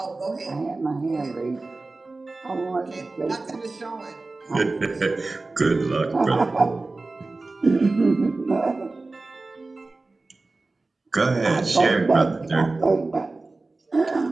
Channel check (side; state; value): left; quieter; 3.4 dB